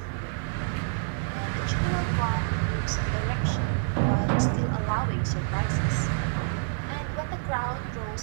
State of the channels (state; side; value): silent; left; digital silence